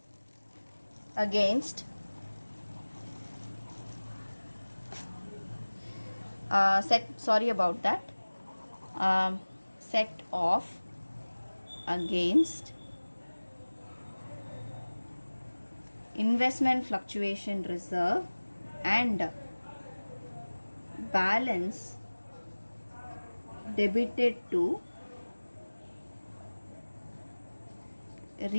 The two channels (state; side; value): inverted; both; correlation -1.00